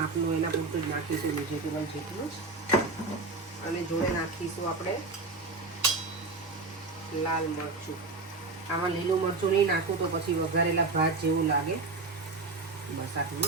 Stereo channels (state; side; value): quieter; left; 3.6 dB